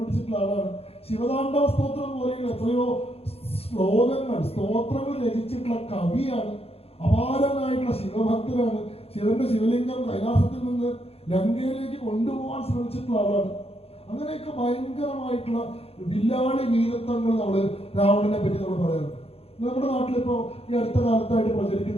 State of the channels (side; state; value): right; late; 0.29 ms